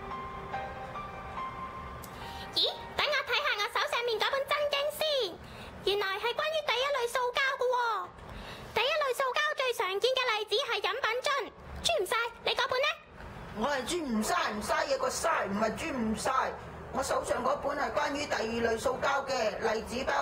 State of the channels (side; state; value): both; identical; correlation 1.00